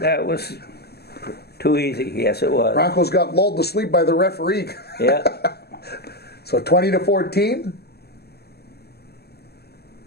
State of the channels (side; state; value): right; late; 0.46 ms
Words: was too easy. Yes, it was. Broncos got lulled to sleep by the referee. Yeah. So 20-14.